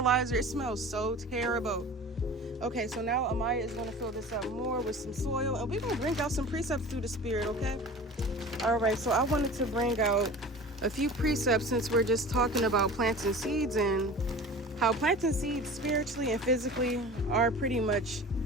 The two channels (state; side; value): normal; both; correlation 0.38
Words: it smells so terrible. Okay, so now Amaya is going to fill this up more with some soil, and we're going to bring out some precepts through the spirit, okay? All right, so I wanted to bring out a few precepts since we're just talking about planting seeds and how planting seeds spiritually and physically are pretty much